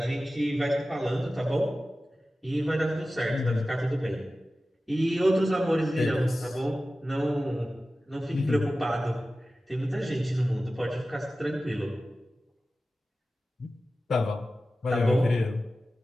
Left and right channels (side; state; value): both; normal; correlation 0.95